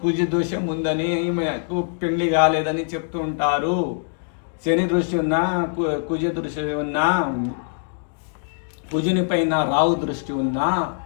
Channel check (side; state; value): right; silent; digital silence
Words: కుజ దోషం ఉందని, పెళ్లి కాలేదని చెప్తూ ఉంటారు. శని దృష్టి ఉన్నా, కుజ దృష్టి ఉన్నా, కుజుని పైన రావు దృష్టి ఉన్నా